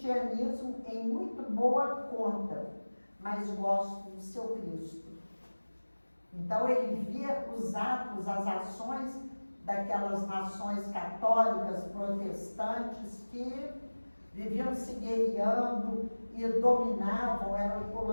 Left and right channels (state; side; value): inverted; both; correlation -1.00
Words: em muito boa conta, mas gosto do seu Cristo. Então ele via os atos, as ações daquelas nações católicas, protestantes, que viviam se guerreando e dominavam, eram